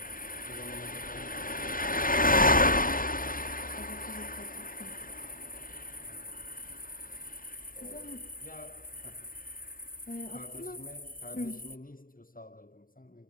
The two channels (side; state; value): right; late; 0.41 ms